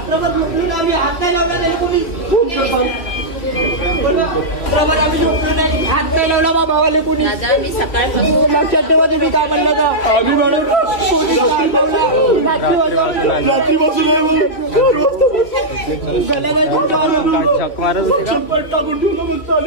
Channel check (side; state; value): right; late; 3.0 ms